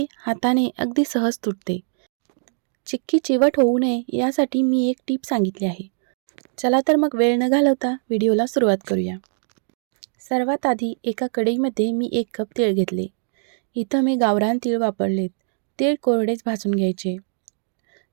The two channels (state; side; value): silent; left; digital silence